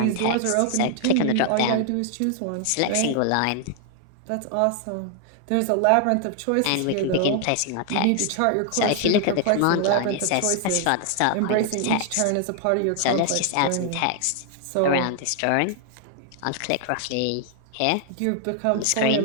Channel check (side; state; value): both; different; correlation 0.00